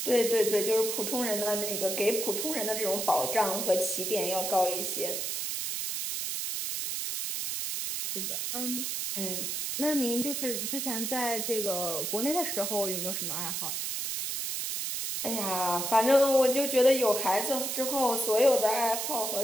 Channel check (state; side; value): noise; right; hiss, 2 dB below the sound